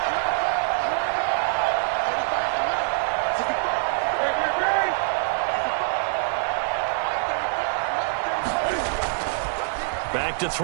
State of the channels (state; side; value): silent; left; digital silence